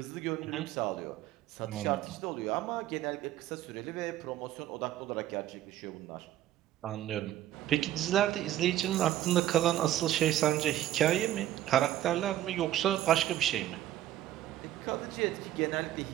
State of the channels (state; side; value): quieter; left; 13.0 dB